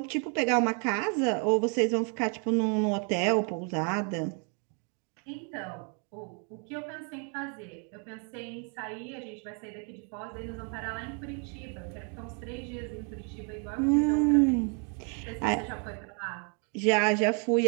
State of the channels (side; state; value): left; quieter; 39.4 dB